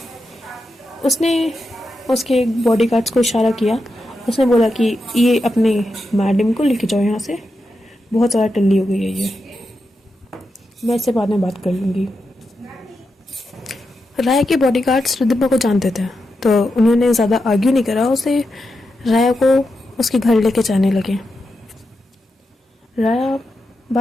उसने उसके बॉडीगार्ड्स को इशारा किया। उसने बोला कि ये अपने मैडम को लेके जाओ यहाँ से, बहुत ज़्यादा टल्ली हो गई है ये, मैं इससे बाद में बात कर लूँगी। राया के बॉडीगार्ड्स रिद्धिमा को जानते थे, तो उन्होंने ज़्यादा आर्ग्यू नहीं करा, उसे राया को उसके घर लेके जाने लगे। राया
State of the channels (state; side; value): normal; both; correlation 0.87